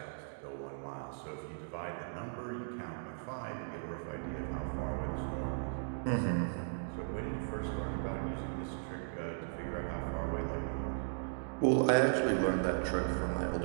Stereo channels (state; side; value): silent; left; digital silence